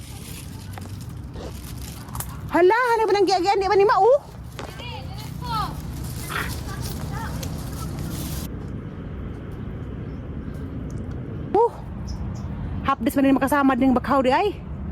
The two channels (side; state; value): both; identical; correlation 1.00